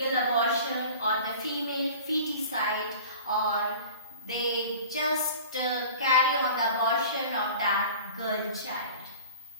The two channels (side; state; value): both; inverted; correlation -0.41